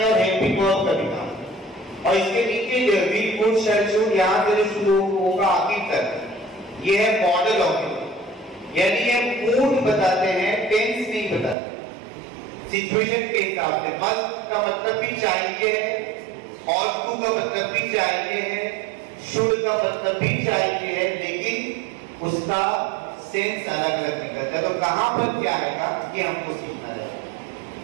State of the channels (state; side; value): drops out; left; at 11.6 s